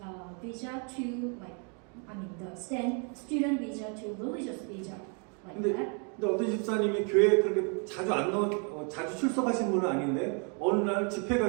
visa to the student visa to religious visa, like that. 근데 어떤 집사님이 교회에 그렇게 자주 출석하신 분은 아닌데 어느 날 집회가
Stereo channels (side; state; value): left; quieter; 38.7 dB